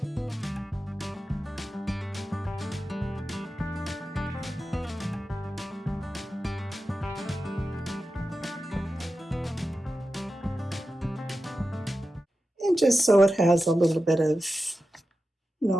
And just so it has a little bit of,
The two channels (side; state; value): both; normal; correlation 0.92